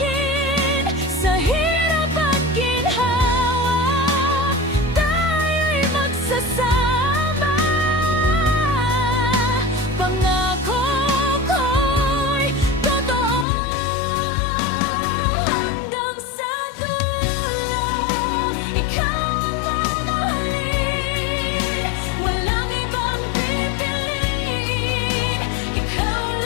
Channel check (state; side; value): drops out; right; at 13.5 s